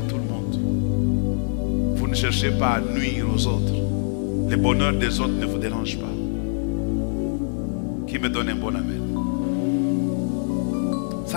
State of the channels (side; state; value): right; silent; digital silence